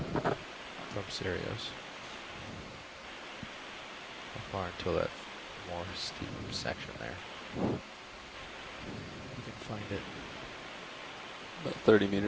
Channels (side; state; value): both; identical; correlation 1.00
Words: from Sirius? How far until that more steep section there? You can find it. About 30